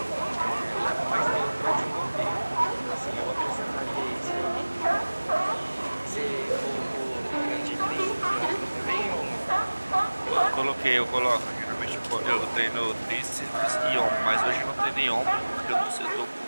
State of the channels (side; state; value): both; inverted; correlation -1.00